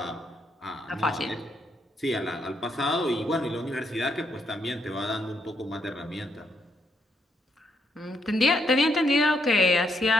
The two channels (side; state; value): both; normal; correlation 0.76